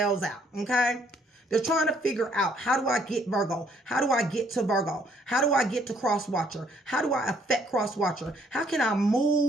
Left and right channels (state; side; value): normal; both; correlation 0.65